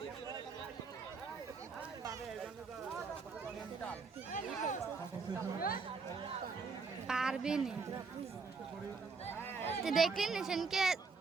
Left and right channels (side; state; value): left; quieter; 4.7 dB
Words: পারবে না, দেখলেন সেনকে